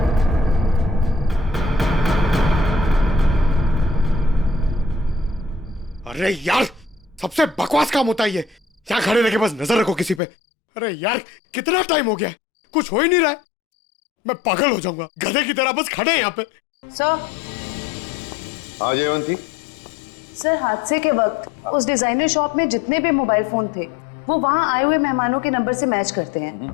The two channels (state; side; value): drops out; right; at 10.2 s